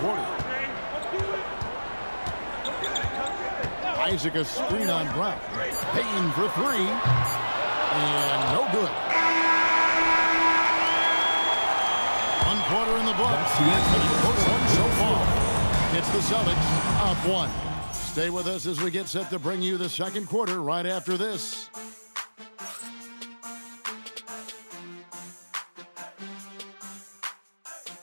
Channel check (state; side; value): inverted; both; correlation -1.00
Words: Isaac a screen on Brown. Bain for three. And no good. One quarter in the books. First one so far. It's the Celtics up one. Stay with us as we get set to bring you the second quarter right after this.